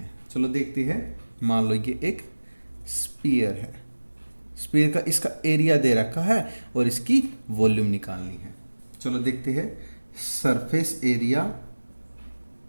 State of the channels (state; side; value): inverted; both; correlation -1.00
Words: चलो देखते हैं। मान लो ये एक स्फीयर है, स्फीयर का इसका एरिया दे रखा है और इसकी वॉल्यूम निकालनी है। चलो देखते हैं। सरफेस एरिया